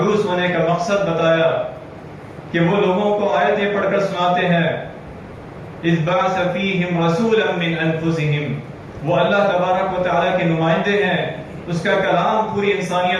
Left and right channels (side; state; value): both; identical; correlation 1.00